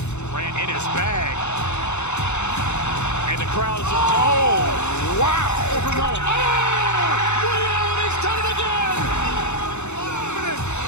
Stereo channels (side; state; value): right; late; 0.82 ms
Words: Ran in his bag. And the crowd is, oh, wow. Will, he's done it again.